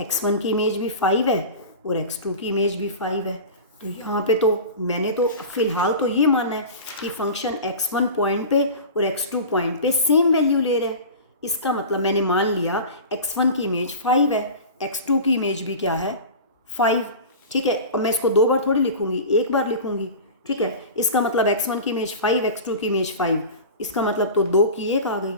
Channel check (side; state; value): both; inverted; correlation -0.33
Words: की इमेज भी 5 है और x2 की इमेज भी 5 है। तो यहाँ पे तो मैंने तो फिलहाल तो ये माना है कि फंक्शन x1 पॉइंट पे और x2 पॉइंट पे सेम वैल्यू ले रहा है। इसका मतलब मैंने मान लिया x1 की इमेज 5 है, x2 की इमेज भी क्या है, 5, ठीक है। और मैं इसको 2 बार थोड़ी लिखूंगी, एक बार लिखूंगी, ठीक है। इसका मतलब x1 की इमेज 5, x2 की इमेज 5, इसका मतलब तो 2 की 1 आ गई,